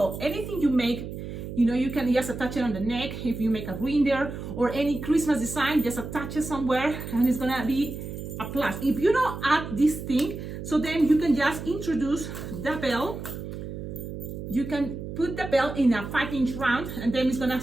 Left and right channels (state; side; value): noise; right; hum, 8 dB below the sound